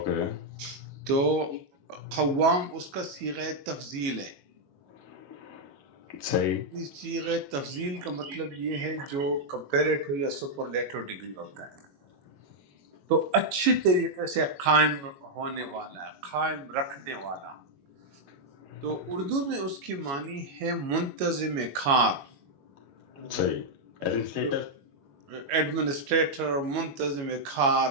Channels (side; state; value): left; late; 22 ms